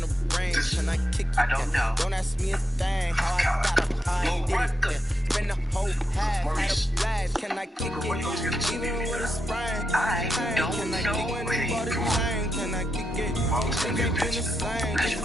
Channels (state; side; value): normal; both; correlation 0.84